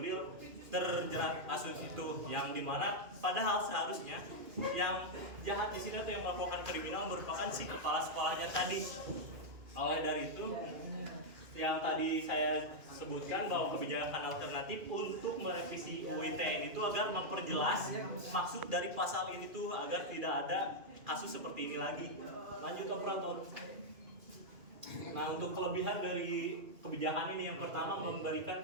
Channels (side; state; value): left; late; 2.4 ms